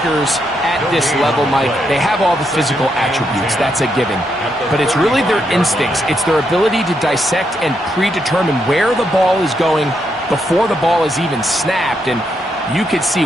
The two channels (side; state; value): both; normal; correlation 0.79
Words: at this level, Mike, they have all the physical attributes. That's a given. But it's really their instincts. It's their ability to dissect and predetermine where the ball is going before the ball is even snapped. And you could see